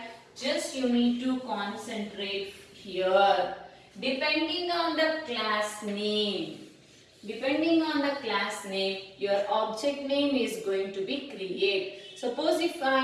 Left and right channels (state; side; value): identical; both; correlation 1.00